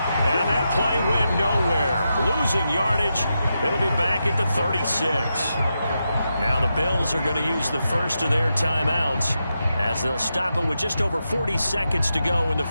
that play went nowhere. Losing yardage. It'll be back at the 36. Now the Bills are going to use the first of their timeouts as they'll stop it with just over 40 seconds to go in the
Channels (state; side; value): inverted; both; correlation -0.87